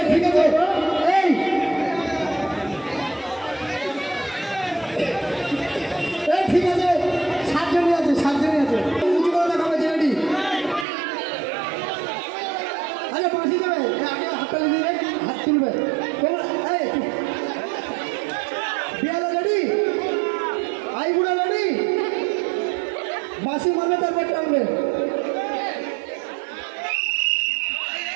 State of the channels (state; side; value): drops out; left; at 10.9 s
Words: ঠিক আছে এই ঠিক আছে 7 জনই আছে 7 জনই আছে উঁচু করে দেখাবে রেডি আরে বাঁশি দেবে আগে হাততালি দিয়ে হাত তুলবে এই বিয়ালা রেডি আই বুড়া রেডি বাঁশি মারবে তারপর টানবে